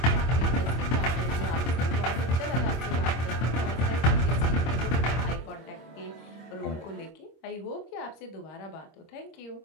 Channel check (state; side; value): late; right; 25 ms